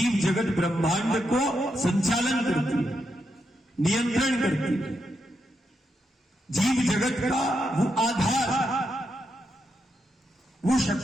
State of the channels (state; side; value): normal; both; correlation 0.83